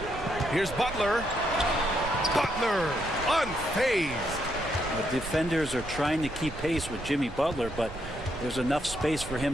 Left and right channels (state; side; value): noise; right; rumble, 12 dB below the sound